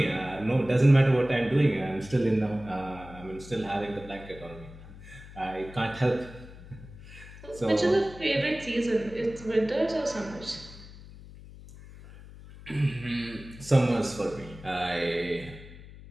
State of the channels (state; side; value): noise; left; hum, 17 dB below the sound